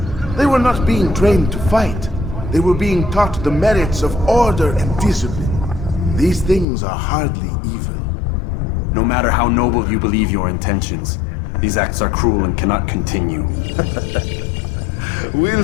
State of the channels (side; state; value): right; drops out; at 6.7 s